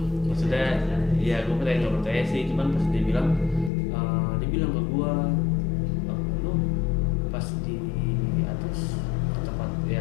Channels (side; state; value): right; drops out; at 3.7 s